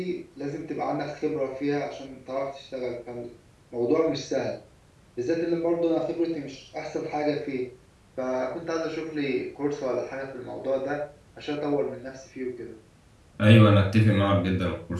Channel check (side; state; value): both; identical; correlation 1.00